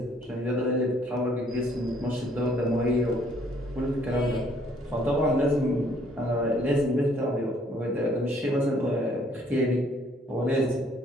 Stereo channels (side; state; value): both; normal; correlation 0.63